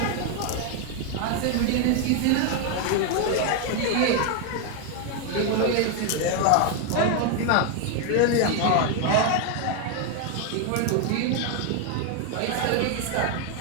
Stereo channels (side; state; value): both; different; correlation 0.01